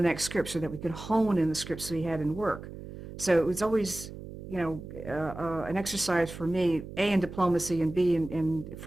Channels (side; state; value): right; noise; hum, 12 dB below the sound